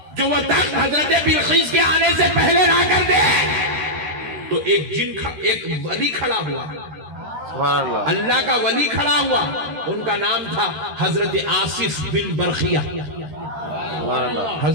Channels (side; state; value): left; late; 13 ms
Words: جو وہ تخت حضرت بلقیس کے آنے سے پہلے لا کر دے؟ تو ایک ولی کھڑا ہوا، سبحان اللہ، اللہ کا ولی کھڑا ہوا، ان کا نام تھا حضرت آصف بن برخیہ۔ سبحان اللہ،